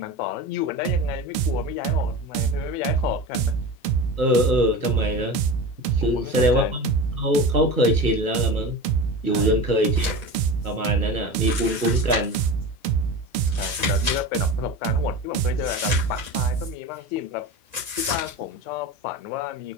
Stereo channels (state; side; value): late; right; 1.9 ms